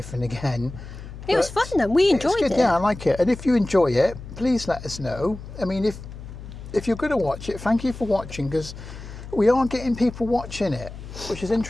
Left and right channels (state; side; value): noise; left; hum, 13 dB below the sound